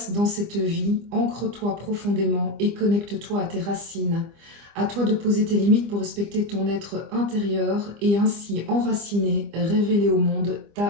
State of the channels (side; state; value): left; late; 25 ms